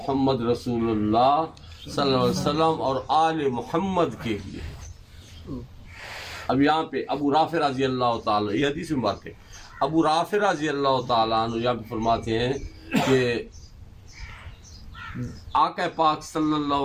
رسول اللہ صلی اللہ علیہ وسلم اور آل محمد کے لیے. اب یہاں پہ ابو رافع رضی اللہ تعالیٰ، یہ حدیث مبارک ہے، ابو رافع رضی اللہ تعالیٰ عنہ یہاں پہ فرماتے ہیں کہ آقا پاک صلی اللہ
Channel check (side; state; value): both; identical; correlation 1.00